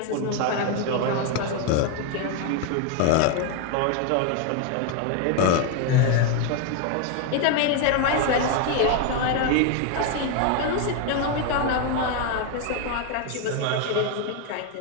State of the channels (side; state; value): both; different; correlation 0.01